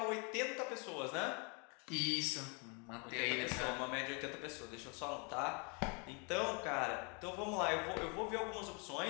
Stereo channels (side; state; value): right; quieter; 34.0 dB